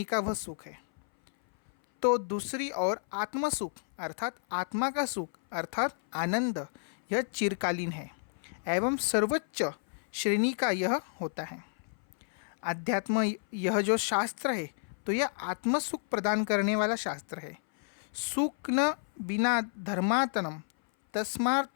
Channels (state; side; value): silent; right; 57 dB below the other